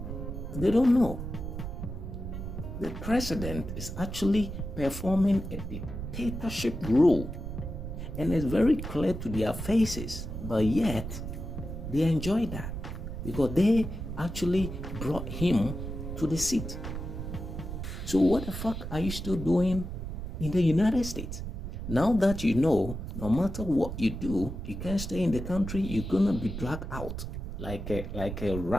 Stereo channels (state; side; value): noise; right; rumble, 7 dB below the sound